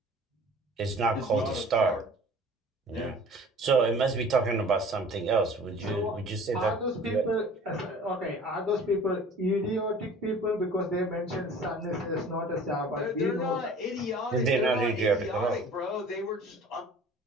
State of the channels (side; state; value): both; normal; correlation 0.46